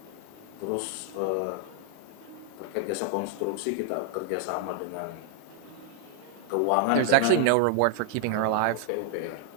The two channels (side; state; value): both; different; correlation 0.00